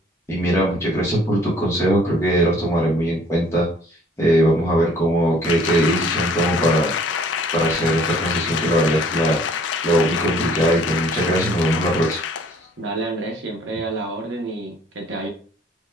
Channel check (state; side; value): normal; both; correlation 0.57